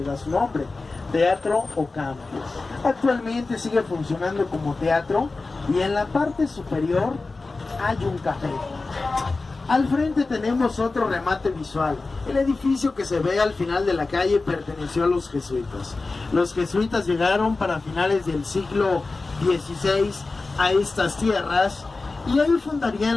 da su nombre, Teatro Ocampo. Actualmente sigue funcionando como teatro y en la parte superior hay un café. Al frente tenemos otro remate visual. El edificio que se ve al final de la calle perteneció a los jesuitas. Los jesuitas llegaron para finales del siglo XVI a estas tierras y ahí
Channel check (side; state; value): right; quieter; 3.6 dB